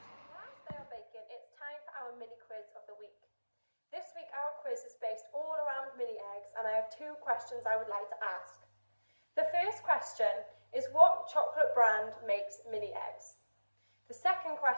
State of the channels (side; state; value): both; inverted; correlation -1.00